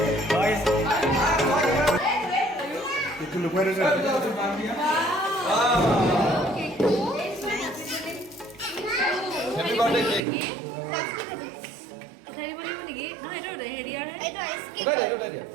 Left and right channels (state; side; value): drops out; left; at 10.2 s